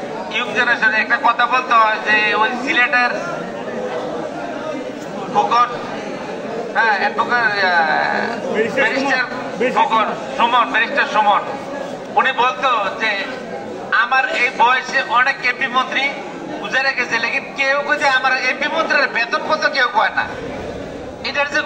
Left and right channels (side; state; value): both; identical; correlation 1.00